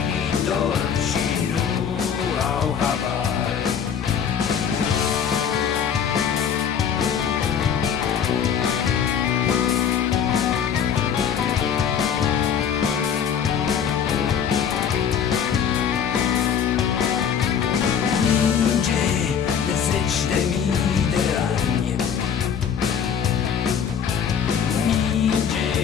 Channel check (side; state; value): right; quieter; 7.8 dB